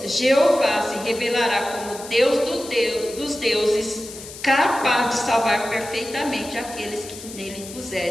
Jeová se revelará como Deus dos deuses, capaz de salvar perfeitamente aqueles que nele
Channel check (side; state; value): left; noise; hiss, 14 dB below the sound